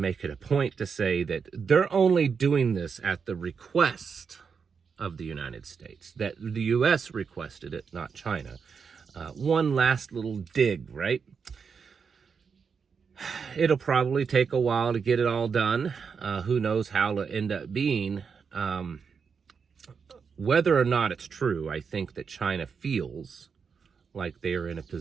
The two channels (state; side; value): quieter; left; 6.0 dB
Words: it a point to say that they're only doing this at the request of the United States, that the U.S. requested it, not China. One last little dig, right? It'll probably take a while to get it all done. Who knows how it'll end up being. Whether or not it's true, I think that China feels like they are in a